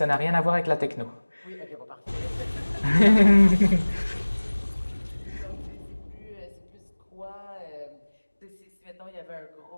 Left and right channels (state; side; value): inverted; both; correlation -1.00